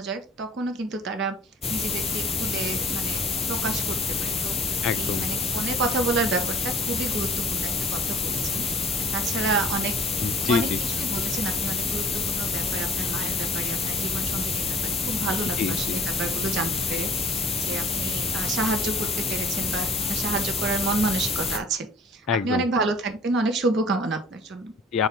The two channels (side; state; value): both; normal; correlation 0.51